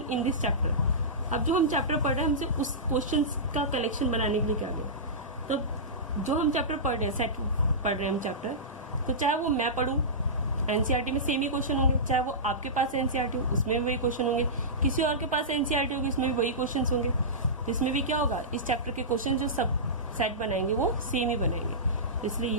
in this chapter. अब जो हम चैप्टर पढ़ रहे हैं हमसे उस क्वेश्चन का कलेक्शन बनाने के लिए क्या गया, तो जो हम चैप्टर पढ़ रहे हैं, सेट पढ़ रहे हैं हम चैप्टर, तो चाहे वो मैं पढ़ूं, एनसीईआरटी में सेम ही क्वेश्चन होंगे, चाहे वो आपके पास एनसीईआरटी हो उसमें भी वही क्वेश्चन होंगे, किसी और के पास एनसीईआरटी होगी उसमें भी वही क्वेश्चन होंगे। तो इसमें भी क्या होगा, इस चैप्टर के क्वेश्चन जो सब सेट बनाएंगे वो सेम ही बनाएंगे, तो इसलिए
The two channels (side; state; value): both; normal; correlation -0.18